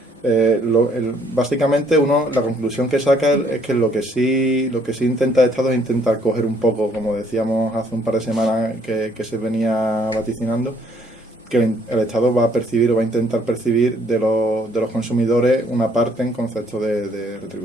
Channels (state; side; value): normal; both; correlation 0.64